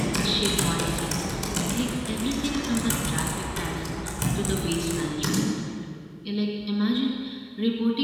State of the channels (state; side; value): identical; both; correlation 1.00